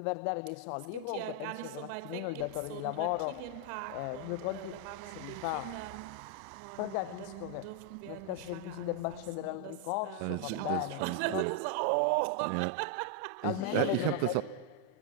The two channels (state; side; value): different; both; correlation 0.00